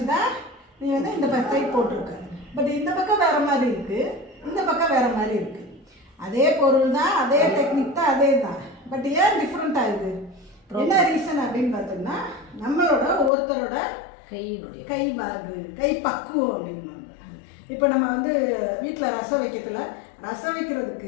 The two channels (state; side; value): drops out; right; at 13.3 s